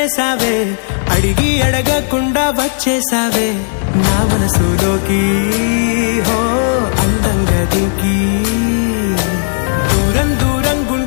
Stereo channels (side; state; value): right; silent; digital silence